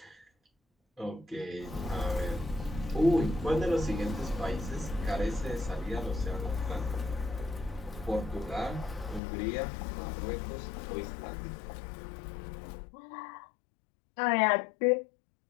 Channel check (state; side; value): drops out; right; at 9.2 s